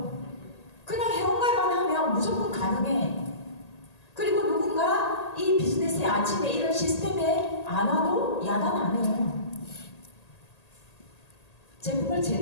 그냥 회원가입만 하면 무조건 가능해. 그리고 누군가 이 비즈니스의 아침에 이런 시스템에 안 와도 야단 안 해요. 제품을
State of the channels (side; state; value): right; late; 1.8 ms